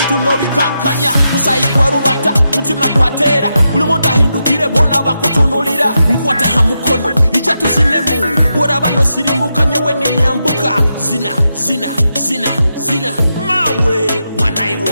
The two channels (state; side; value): inverted; both; correlation -0.86